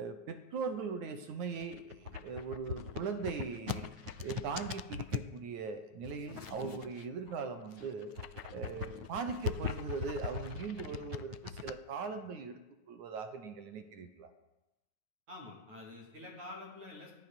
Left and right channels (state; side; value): late; left; 9.4 ms